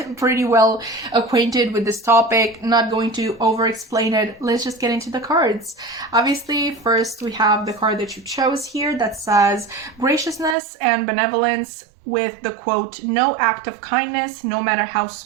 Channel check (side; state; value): left; drops out; at 10.6 s